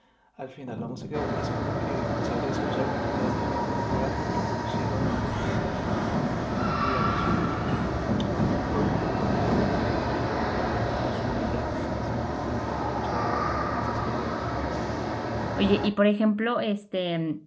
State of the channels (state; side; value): identical; both; correlation 1.00